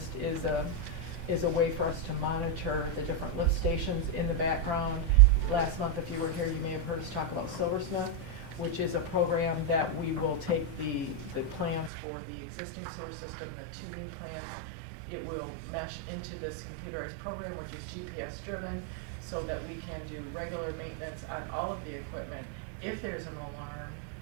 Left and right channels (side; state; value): left; drops out; at 11.9 s